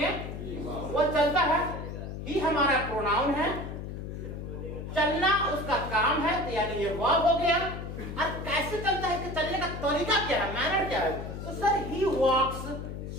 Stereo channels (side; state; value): left; noise; hum, 7 dB below the sound